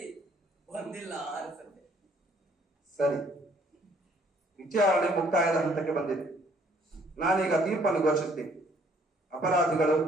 ಬಂದಿಲ್ಲ ಅನ್ಸುತ್ತೆ. ಸರಿ, ವಿಚಾರಣೆ ಮುಕ್ತಾಯದ ಹಂತಕ್ಕೆ ಬಂದಿದೆ. ನಾನೀಗ ತೀರ್ಪನ್ನು ಘೋಷಿಸ್ತೀನಿ. ಅಪರಾಧಿಗಳು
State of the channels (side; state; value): both; normal; correlation 0.62